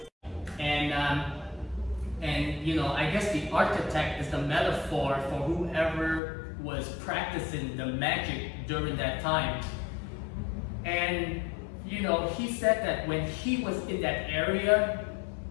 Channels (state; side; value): drops out; right; at 6.2 s